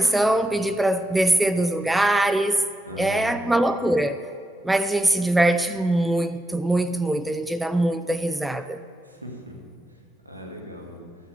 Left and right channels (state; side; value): normal; both; correlation 0.87